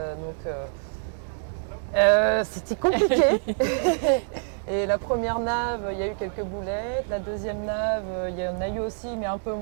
c'était compliqué. Et la première nave, il y a eu quelques boulettes. La deuxième nave, il y en a eu aussi, mais un peu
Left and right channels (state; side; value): silent; left; digital silence